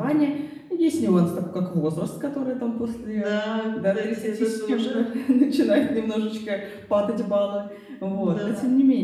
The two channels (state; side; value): identical; both; correlation 1.00